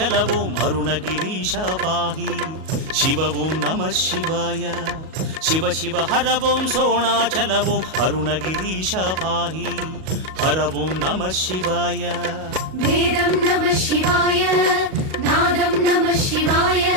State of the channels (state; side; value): late; left; 37 ms